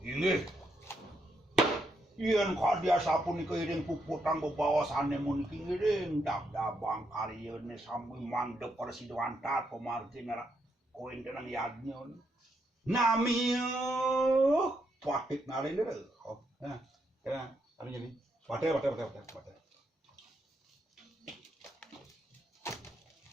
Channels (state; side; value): normal; both; correlation 0.79